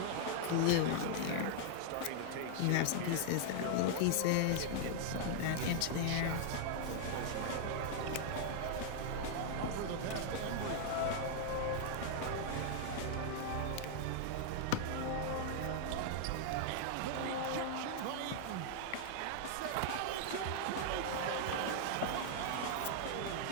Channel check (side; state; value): both; different; correlation -0.01